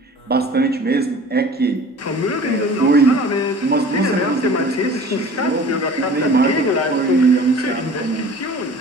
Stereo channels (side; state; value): both; normal; correlation 0.44